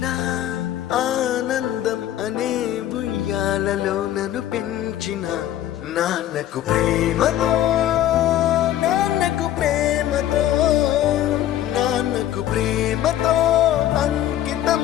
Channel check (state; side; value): quieter; right; 12.5 dB